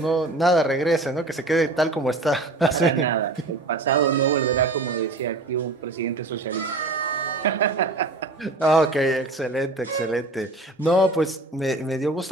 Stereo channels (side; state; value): left; quieter; 3.0 dB